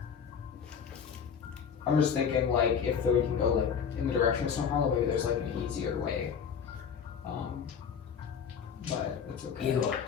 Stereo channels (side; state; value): right; quieter; 7.1 dB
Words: I'm just thinking like if we can go like in the direction of Snowhollow, maybe there's like an easier way. But it's okay. Igor,